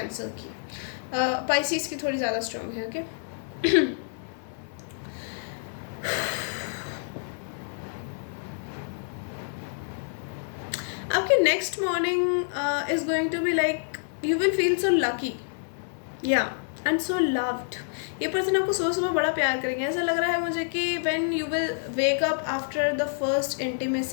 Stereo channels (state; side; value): silent; right; 60 dB below the other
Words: की। पाइसिस की थोड़ी ज़्यादा स्ट्रॉन्ग है, ओके। आपकी next morning is going to be like you will feel so lucky, yeah and so loved. ये पर्सन आपको सुबह सुबह बड़ा प्यार करेंगे, ऐसा लग रहा है मुझे कि when you will wake up after the first